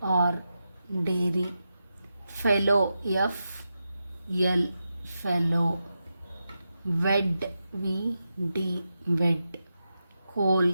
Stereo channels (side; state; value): both; inverted; correlation -0.89